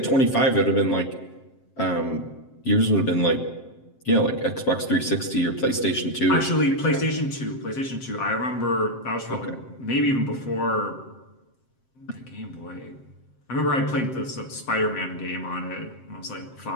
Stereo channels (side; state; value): right; late; 7.6 ms